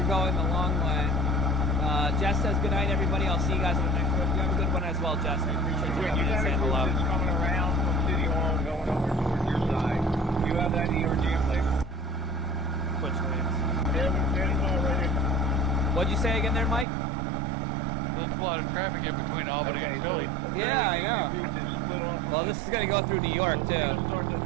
going the long way. Jess says good night, everybody. I'll see you guys on the next one. You have a good one as well, Jess. I appreciate you coming and saying hello. coming around from City Hall and going over towards your side. You have that in your jam plate? Which lanes? Ready. What'd you say again there, Mike? There's a lot of traffic in between Albany and Philly. Yeah, I know. Well, this is going to go through New York, too.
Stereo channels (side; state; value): left; drops out; at 16.9 s